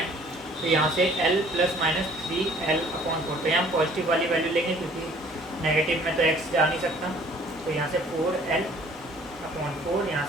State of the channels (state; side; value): normal; both; correlation 0.55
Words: तो यहाँ से l ± 3L/4, तो यहाँ पॉजिटिव वाली वैल्यू लेंगे क्योंकि नेगेटिव में तो x जा नहीं सकता। तो यहाँ से 4L/4, यहाँ